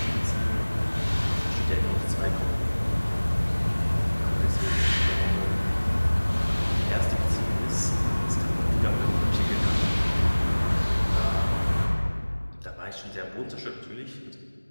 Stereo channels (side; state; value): both; inverted; correlation -1.00